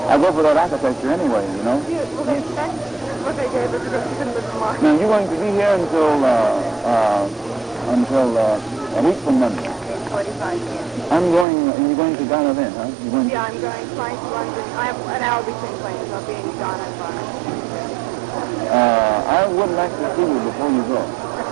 I go for that architecture anyway, you know? Yeah, well, that's what they gave us because she couldn't live in March. Now, you're going to be here until a week from Monday. 45 years. You're going to Ghana then, huh? Yeah, I'm going flying to London. I have an hour between planes. I'll be in Ghana and Ghana. I would like to see you before you go.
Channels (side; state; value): left; drops out; at 11.5 s